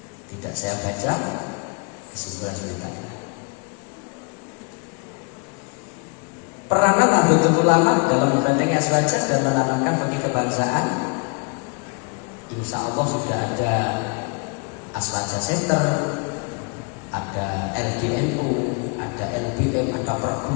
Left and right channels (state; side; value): quieter; right; 34.7 dB